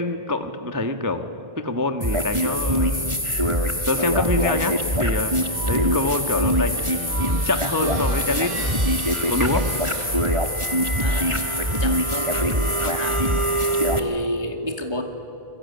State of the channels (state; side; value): late; left; 1.4 ms